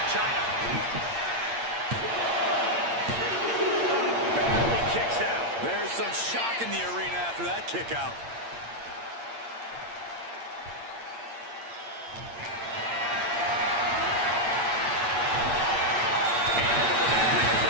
China. Barely kicks out. There's some shock in the arena after that kick out.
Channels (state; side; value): late; left; 8.7 ms